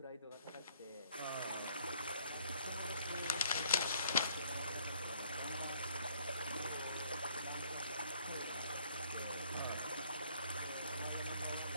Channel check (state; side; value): inverted; both; correlation -0.62